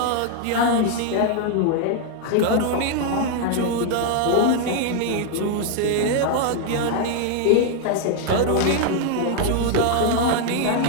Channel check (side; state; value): both; different; correlation 0.00